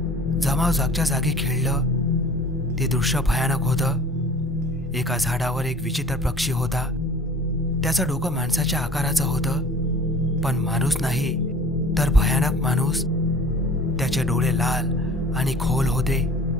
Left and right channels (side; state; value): both; normal; correlation 0.45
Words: जमाव जागच्या जागी खिळलं. ते दृश्य भयानक होतं. एका झाडावर एक विचित्र पक्षी होता. त्याचं डोकं माणसाच्या आकाराचं होतं, पण माणूस नाही तर भयानक माणूस. त्याचे डोळे लाल आणि खोल होते.